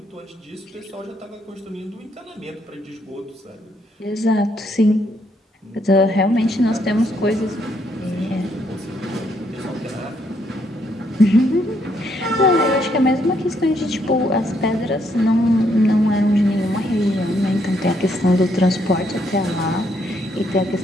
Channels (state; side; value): normal; both; correlation 0.73